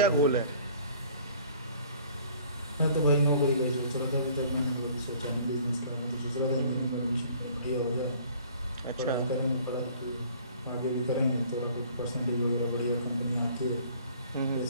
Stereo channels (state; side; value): inverted; both; correlation -0.53